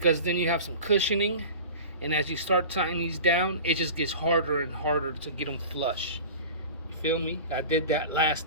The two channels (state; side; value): inverted; both; correlation -0.36